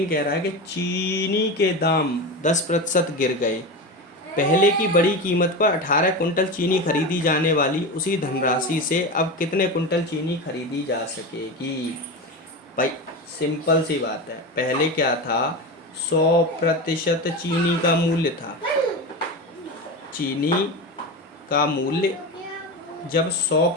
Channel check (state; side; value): normal; both; correlation 0.22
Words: कह रहा है कि चीनी के दाम 10% गिर गए। पहले की बड़ी कीमत पर 18 कुंटल चीनी खरीदी जाने वाली उसी धनराशि से अब कितने कुंटल चीनी खरीदी जा सकेगी? भाई सिंपल सी बात है, पहले क्या था? 100% चीनी का मूल्य था। चीनी का मूल्य जब